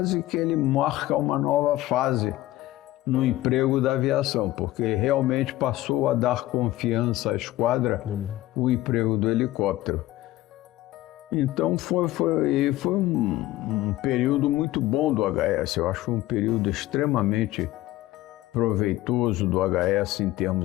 que ele marca uma nova fase no emprego da aviação, porque realmente passou a dar confiança à esquadra o emprego do helicóptero. Então foi um período muito bom do HS, eu acho que foi um período extremamente proveitoso do HS em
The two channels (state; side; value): quieter; right; 16.3 dB